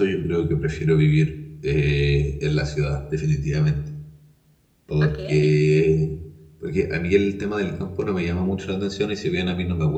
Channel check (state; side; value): identical; both; correlation 1.00